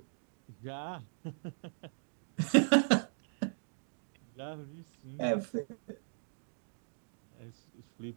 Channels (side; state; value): left; silent; digital silence